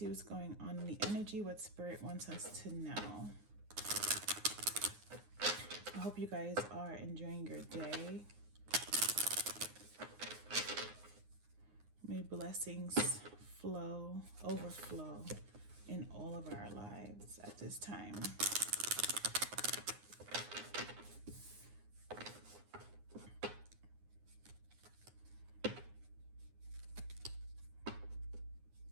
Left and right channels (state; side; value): late; left; 9.7 ms